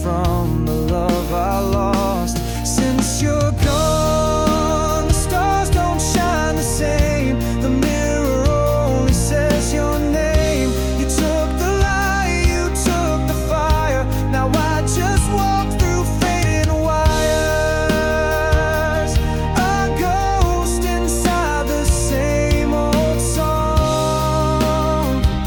from the love I lost. Since you're gone, the stars don't shine the same. The mirror only says your name. You took the light, you took the fire. Now I just walk through faded wires, a ghost inside the same old song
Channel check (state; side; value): identical; both; correlation 1.00